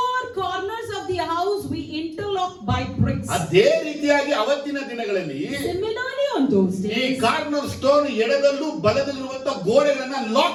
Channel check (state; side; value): identical; both; correlation 1.00